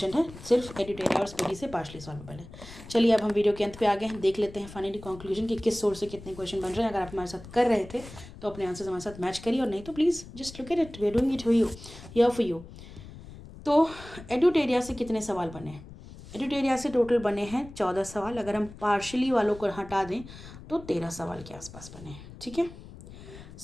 है, सिर्फ एडिटेरिया और स्पीडी से पार्शली सॉल्वेबल है। चलिए अब हम वीडियो के अंत पे आ गए हैं, देख लेते हैं फाइनली कंक्लूजन कि किस सोर्स से कितने क्वेश्चन बन रहे हैं। अगर आप हमारे साथ कर रहे थे तो अपने आंसर्स हमारे साथ मैच करिए, और नहीं तो please just look at it, we are doing it for you, here for you. तो एडिटेरिया से कितने सवाल बने हैं? एडिटेरिया से टोटल बने हैं 14 सवाल, अगर हम पार्शली वालों को हटा दें तो 13 सवाल के आसपास बने हैं, ठीक है।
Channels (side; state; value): left; noise; rumble, 16 dB below the sound